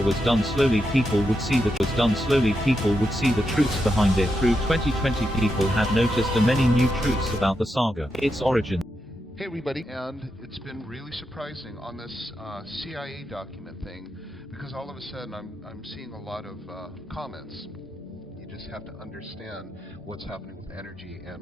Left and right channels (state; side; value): normal; both; correlation 0.85